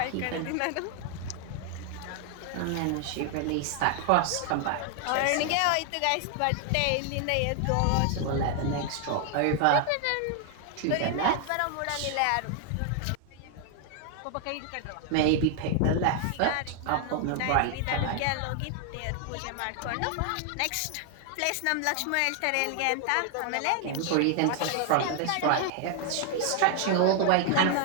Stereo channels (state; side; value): different; both; correlation 0.00